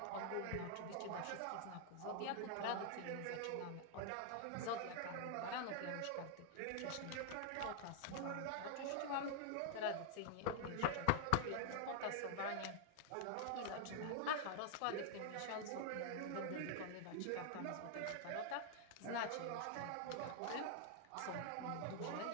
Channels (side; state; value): both; different; correlation 0.00